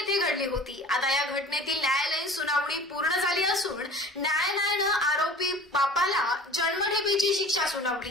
घडली होती। आता या घटनेतील न्यायालयीन सुनावणी पूर्ण झाली असून न्यायालयानं आरोपी बापाला जन्मठेपेची शिक्षा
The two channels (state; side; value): normal; both; correlation 0.43